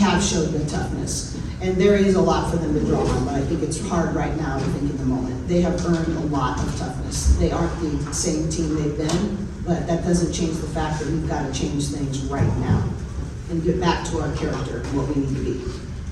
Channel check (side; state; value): both; identical; correlation 1.00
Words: showed the toughness. And there is a lot for them to draw on, but I think it's hard right now to think in the moment. They have earned a lot of toughness. They aren't the same team they've been, but that doesn't change the fact that we've got to change things right now and get back to our character and what we need to be.